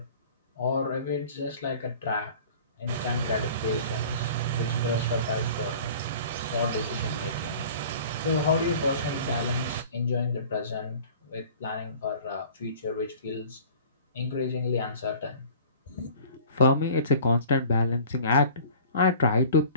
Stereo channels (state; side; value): inverted; both; correlation -0.45